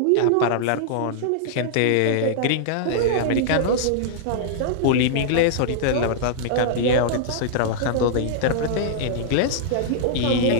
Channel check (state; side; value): different; both; correlation -0.01